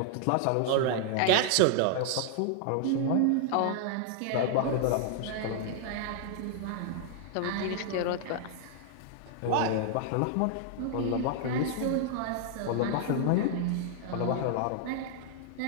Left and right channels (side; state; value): both; different; correlation -0.01